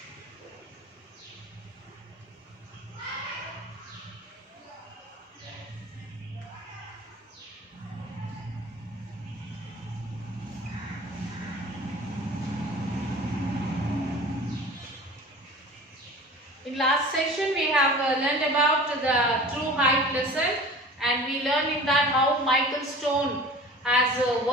In last session, we have learned about the true height lesson, and we learned in that how Michael Stone has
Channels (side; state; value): both; normal; correlation 0.41